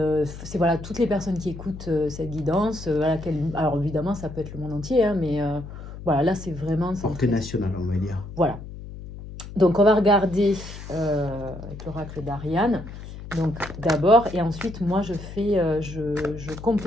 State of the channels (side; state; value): left; noise; hum, 12 dB below the sound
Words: c'est voilà, toutes les personnes qui écoutent cette guidance. Voilà, alors évidemment, ça peut être le monde entier, hein, mais voilà, là, c'est vraiment Portée centré. nationale, on va dire. Voilà. Donc, on va regarder avec l'oracle d'Ariane. Donc, d'abord, et ensuite, moi, je